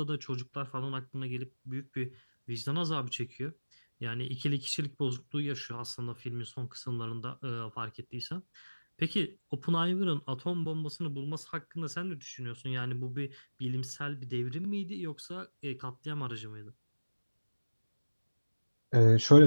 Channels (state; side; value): inverted; both; correlation -1.00